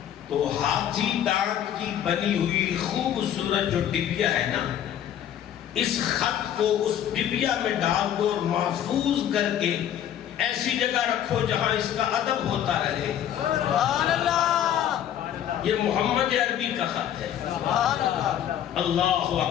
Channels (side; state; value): right; quieter; 10.4 dB